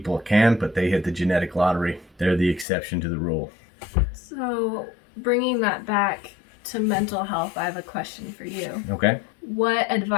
can, but they hit the genetic lottery. They're the exception to the rule. So, bringing that back to mental health, I have a question for you. Okay. What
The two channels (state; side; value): drops out; right; at 2.7 s